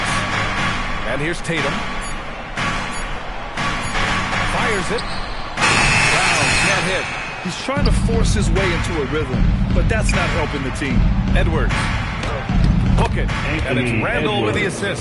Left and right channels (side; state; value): both; identical; correlation 1.00